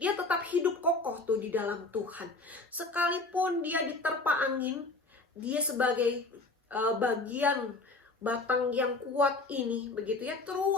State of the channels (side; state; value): right; quieter; 3.3 dB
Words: dia tetap hidup kokoh tuh di dalam Tuhan. Sekalipun dia diterpa angin, dia sebagai bagian batang yang kuat ini begitu ya,